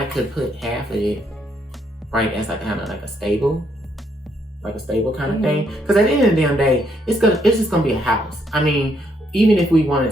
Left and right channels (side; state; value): both; normal; correlation 0.73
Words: could put half of it right as like kind of like a stable kind of thing. Because at the end of the damn day, it's just gonna be a house. I mean, even if we wanted